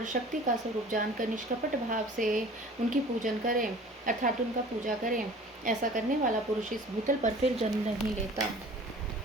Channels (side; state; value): both; normal; correlation 0.45